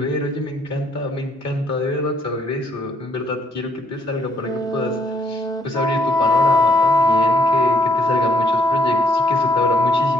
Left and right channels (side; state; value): both; normal; correlation 0.69